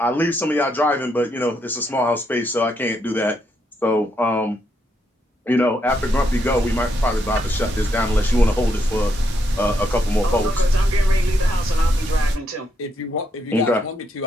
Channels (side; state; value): both; normal; correlation 0.78